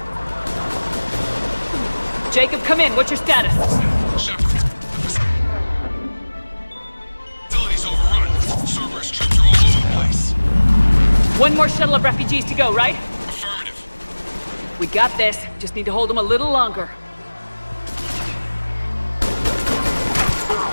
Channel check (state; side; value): inverted; both; correlation -1.00